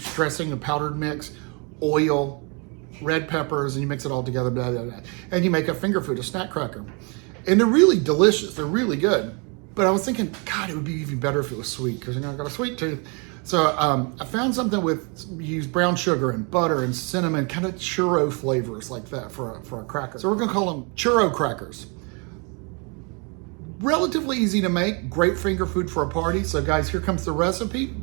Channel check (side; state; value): left; quieter; 33.7 dB